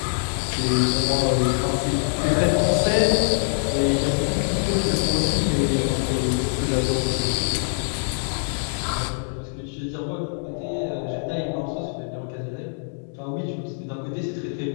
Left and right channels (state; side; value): silent; right; digital silence